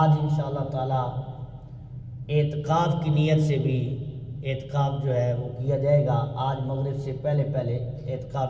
انشاءاللہ تعالی اعتکاف کی نیت سے بھی اعتکاف جو ہے وہ کیا جائے گا۔ آج مغرب سے پہلے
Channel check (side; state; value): both; identical; correlation 1.00